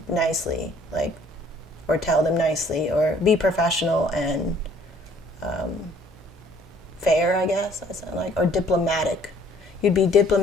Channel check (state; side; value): normal; both; correlation 0.59